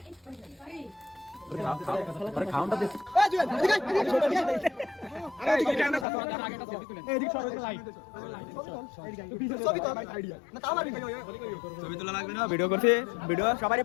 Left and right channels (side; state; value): right; drops out; at 6.1 s